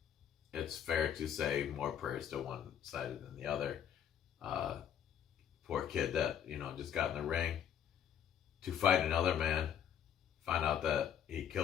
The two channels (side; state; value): right; quieter; 9.2 dB